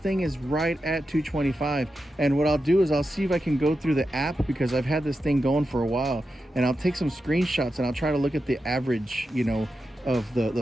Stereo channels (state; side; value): normal; both; correlation 0.89